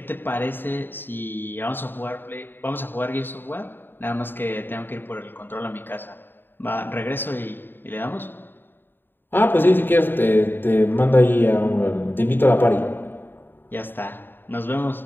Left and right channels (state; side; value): late; right; 0.096 ms